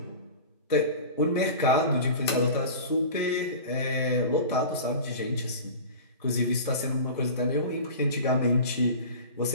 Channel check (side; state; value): both; inverted; correlation -0.34